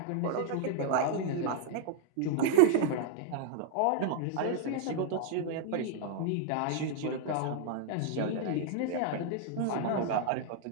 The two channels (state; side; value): different; both; correlation 0.00